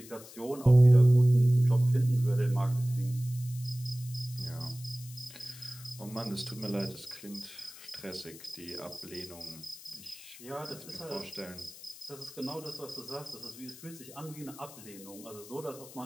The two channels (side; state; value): left; noise; hiss, 17 dB below the sound